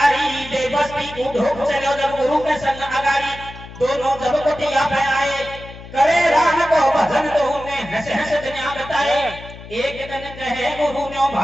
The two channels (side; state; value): left; noise; hum, 15 dB below the sound